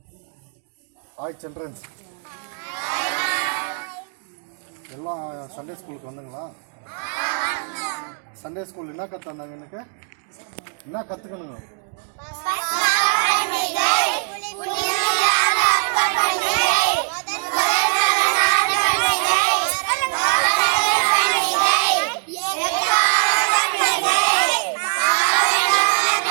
ஹாய் சில்ட்ரன்ஸ், எல்லாம் சண்டே ஸ்கூலுக்கு வந்தீங்களா? சண்டே ஸ்கூல் என்ன கற்றுந்தாங்க? எனக்கு என்ன கற்றுக்கணுங்க?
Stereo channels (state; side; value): silent; left; digital silence